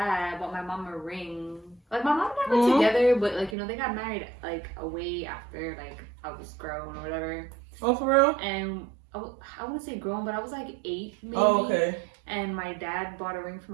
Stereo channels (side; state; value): left; drops out; at 3.6 s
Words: bought my mom a ring. Like my mom and I were together, but like they got married like way after like I was grown or whatever. Oh, for real? And I wouldn't say grown, but I was like 8 maybe. Oh, okay. And my dad bought a ring for